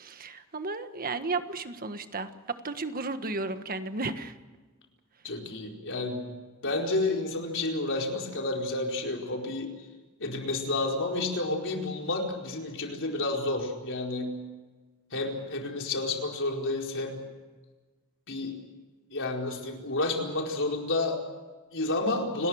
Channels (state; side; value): normal; both; correlation -0.11